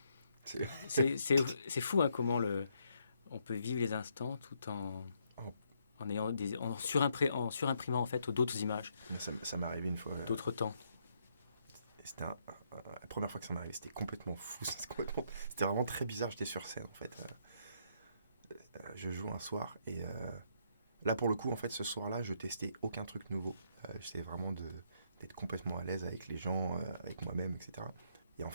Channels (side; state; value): both; inverted; correlation -0.73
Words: C'est fou, hein, comment on peut vivre les instants tout en ayant en surimprimant en fait d'autres images, Ça m'est arrivé une fois. d'autres temps. C'était la première fois que ça m'est arrivé, c'était complètement fou. C'était vraiment très bizarre. J'étais sur scène en fait. Je joue un soir et là pour le coup en fait ce soir-là je testais aucun truc nouveau. J'essayais vraiment d'être complètement à l'aise avec les gens, avec moi-même, etc. Et en